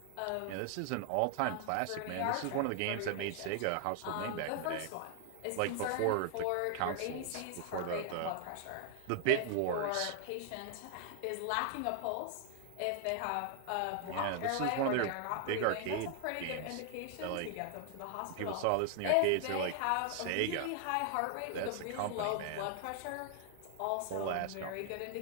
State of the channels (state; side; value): different; both; correlation 0.00